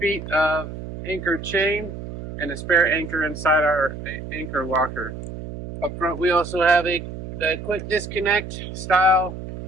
of anchor chain and a spare anchor inside our anchor locker. Up front, we also have a quick disconnect style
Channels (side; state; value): right; noise; hum, 10 dB below the sound